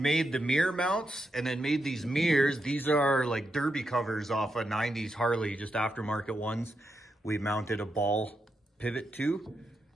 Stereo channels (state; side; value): normal; both; correlation 0.84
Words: the mirror mounts and then made these mirrors. These are like derby covers off a 90s Harley, just aftermarket ones. We mounted a ball pivot to,